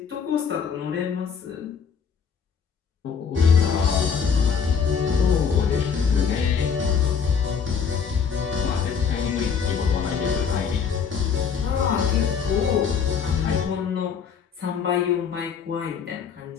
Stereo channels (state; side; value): quieter; right; 6.6 dB